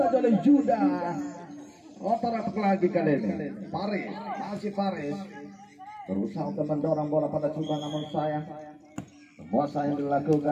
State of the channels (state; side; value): identical; both; correlation 1.00